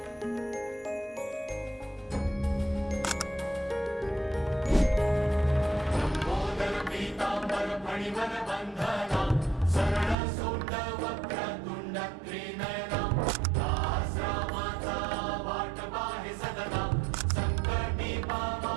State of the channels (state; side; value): drops out; left; at 10.2 s